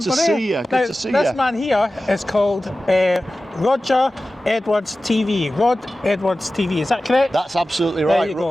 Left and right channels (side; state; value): both; normal; correlation 0.95